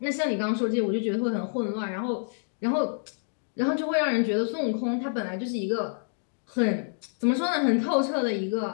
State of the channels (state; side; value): silent; right; digital silence